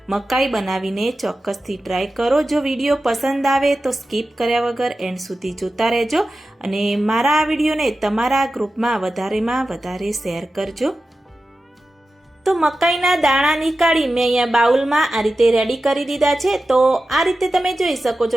મકાઈ બનાવીને ચોક્કસથી ટ્રાય કરો। જો વિડીયો પસંદ આવે તો સ્કીપ કર્યા વગર એન્ડ સુધી જોતા રહેજો અને મારા આ વિડીયોને તમારા ગ્રુપમાં વધારે શેર કરજો। તો મકાઈના દાણા નીકાળી મેં અહીંયા બાઉલમાં આ રીતે રેડી કરી દીધા છે। તો આ રીતે તમે જોઈ શકો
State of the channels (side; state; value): both; normal; correlation 0.93